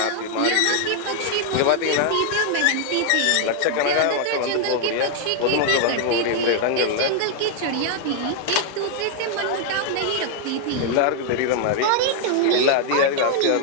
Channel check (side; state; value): both; different; correlation 0.00